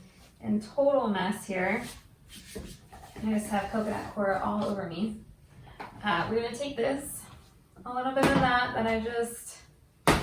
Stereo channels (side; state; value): both; identical; correlation 1.00